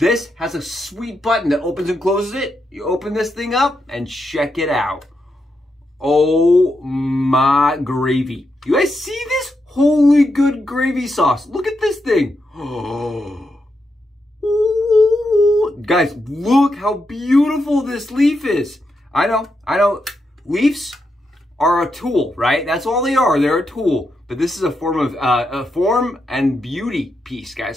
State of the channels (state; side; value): normal; both; correlation 0.84